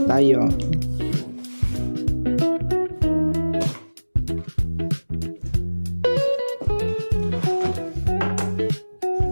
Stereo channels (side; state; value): both; inverted; correlation -1.00